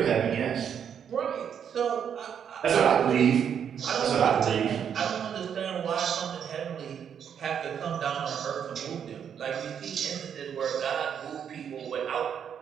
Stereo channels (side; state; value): left; quieter; 8.2 dB